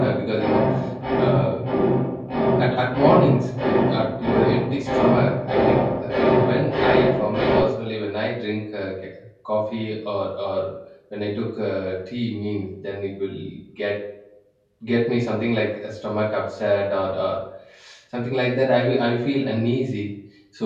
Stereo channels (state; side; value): identical; both; correlation 1.00